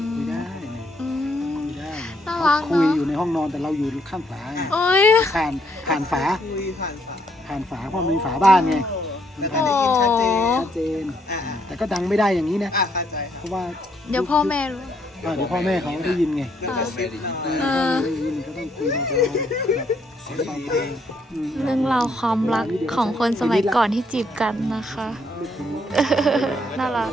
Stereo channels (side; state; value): both; normal; correlation 0.71